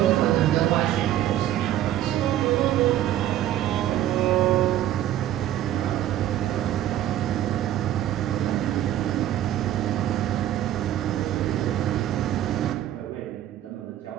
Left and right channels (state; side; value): quieter; left; 12.4 dB